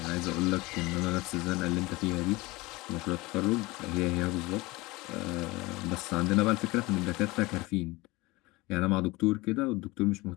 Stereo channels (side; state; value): right; quieter; 22.1 dB